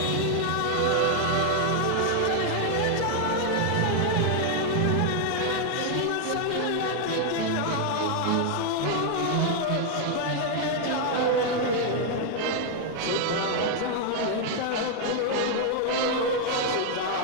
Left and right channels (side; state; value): both; different; correlation 0.00